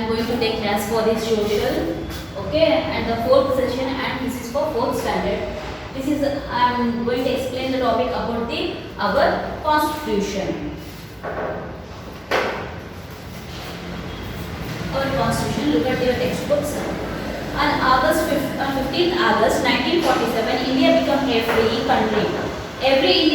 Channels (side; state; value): both; identical; correlation 1.00